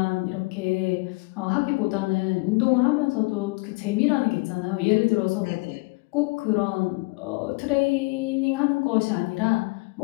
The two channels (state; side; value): quieter; right; 27.9 dB